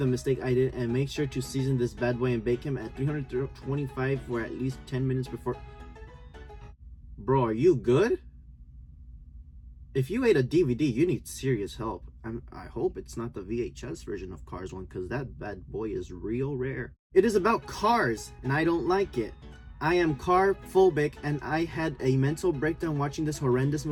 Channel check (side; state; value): both; identical; correlation 1.00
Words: mistake I did, and make sure to season this bad boy and bake him at 325 for at least 10 minutes before. Bro, are you good? If you ate a DVD, you need serious help. I hope it's not the VHS version of Cars 1, because that bad boy is real rare. It is about cars, and I don't like it. I am car phobic, and I had a mental breakdown watching this horrendous